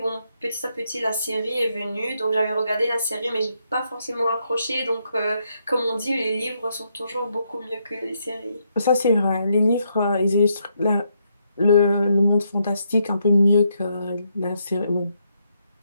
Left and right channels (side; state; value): both; inverted; correlation -0.77